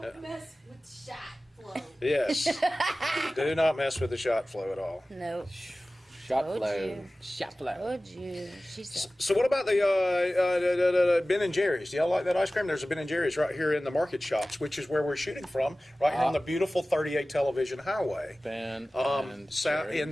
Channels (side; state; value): both; normal; correlation 0.97